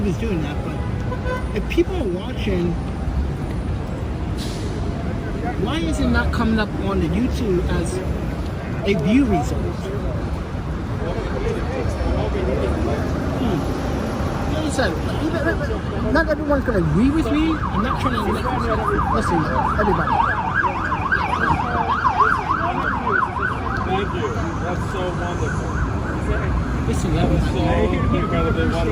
is doing that, but if people are watching, why is it not coming up on the YouTube as a view result? Like I said, not everyone's going to agree with me. I'm not trying to listen, everybody. Thank you. That's so wonderful. Listen, everybody.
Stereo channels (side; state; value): both; identical; correlation 1.00